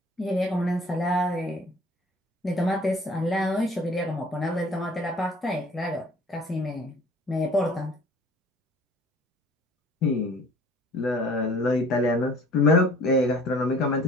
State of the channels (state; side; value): normal; both; correlation 0.51